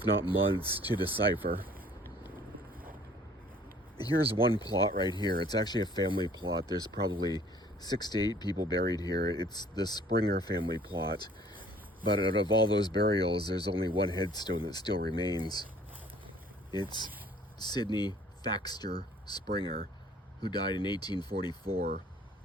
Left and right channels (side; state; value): both; normal; correlation 0.55